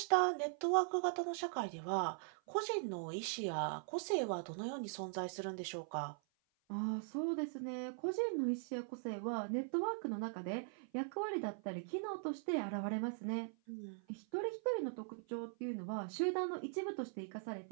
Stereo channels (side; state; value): left; silent; 50 dB below the other